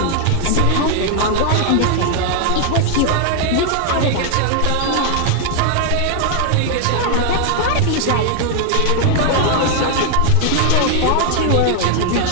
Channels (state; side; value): different; both; correlation 0.00